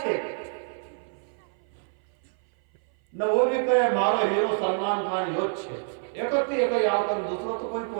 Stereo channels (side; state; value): left; silent; 56 dB below the other